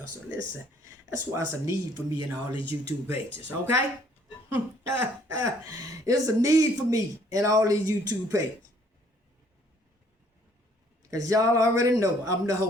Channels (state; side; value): normal; both; correlation 0.61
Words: So listen, that's why it's a need for me in all these YouTube pages, okay? It's a need for me in all these YouTube pages. Because y'all already know I'm the